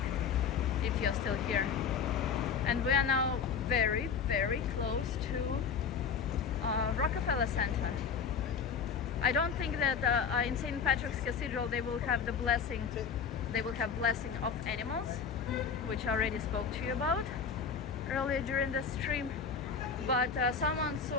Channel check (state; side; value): quieter; right; 6.2 dB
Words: If you're still here. And we are now very, very close to Rockefeller Center. I don't think that in St. Patrick's Cathedral they will have the blessing. They will have blessing of animals, which I already spoke to you about earlier during the stream. But someone